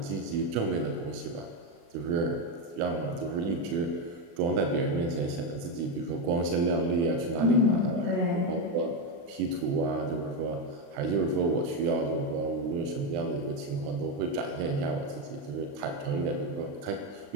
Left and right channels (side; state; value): left; late; 35 ms